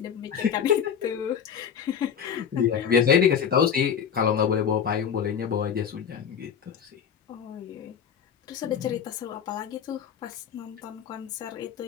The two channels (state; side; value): quieter; right; 7.8 dB